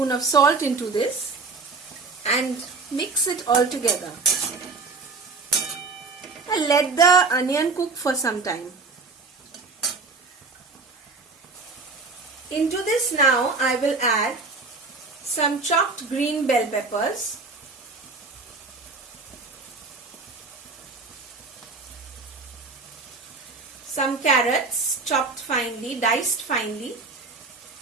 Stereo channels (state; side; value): quieter; left; 4.2 dB